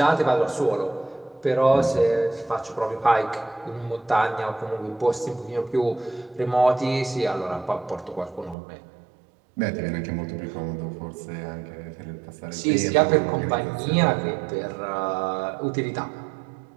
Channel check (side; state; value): left; drops out; at 8.6 s